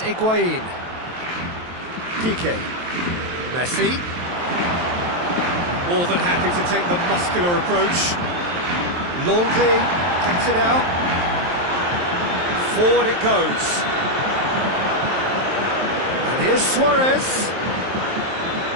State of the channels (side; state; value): left; late; 23 ms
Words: Piqué. Messi. More than happy to take the muscular approach. Longley gets it out. Forward it goes. And here's Suarez.